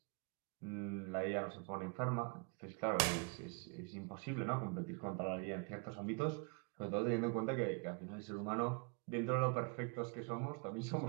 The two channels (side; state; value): left; quieter; 34.3 dB